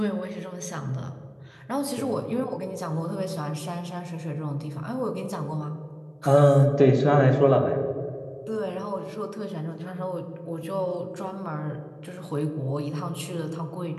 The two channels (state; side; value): identical; both; correlation 1.00